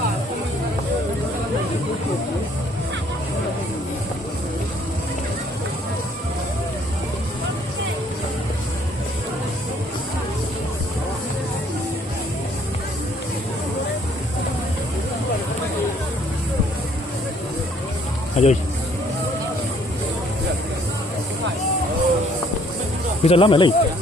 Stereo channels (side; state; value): both; normal; correlation 0.62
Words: À rồi. Bây giờ lắm này.